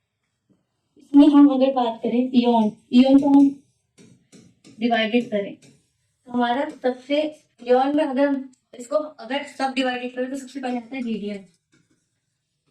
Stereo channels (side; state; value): both; identical; correlation 1.00